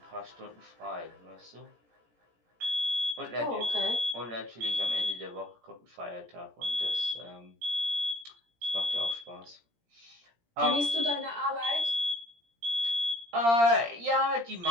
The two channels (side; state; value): left; late; 17 ms